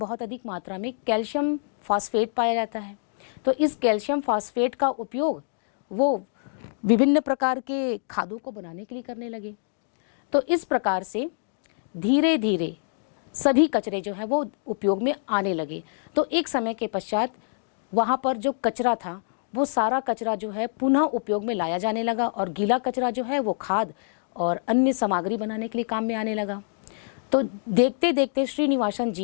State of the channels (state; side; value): silent; right; digital silence